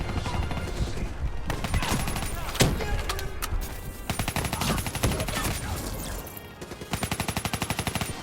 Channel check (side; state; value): both; identical; correlation 1.00